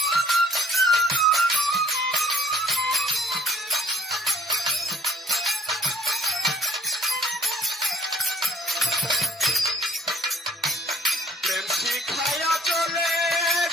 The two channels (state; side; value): normal; both; correlation 0.58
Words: প্রেম শিখাইয়া চলে